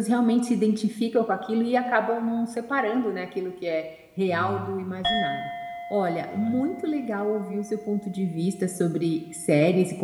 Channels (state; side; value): identical; both; correlation 1.00